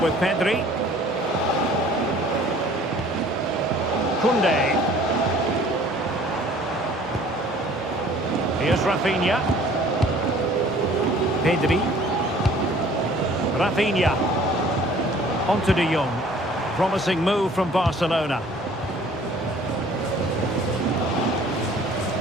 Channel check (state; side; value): normal; both; correlation 0.52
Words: Pedri. Koundé. Here's Rafinha. Pedri. Rafinha. Onto De Jong. Promising move from Barcelona.